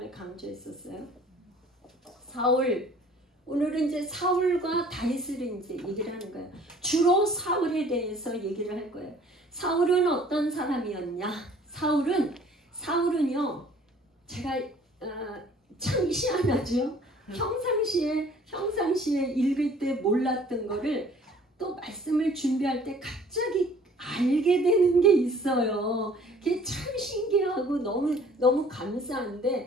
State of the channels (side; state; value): both; normal; correlation 0.53